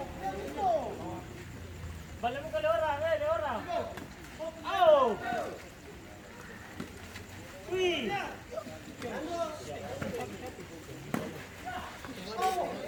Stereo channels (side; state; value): both; identical; correlation 1.00